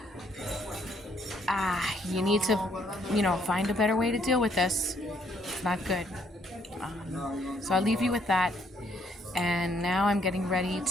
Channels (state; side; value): normal; both; correlation 0.69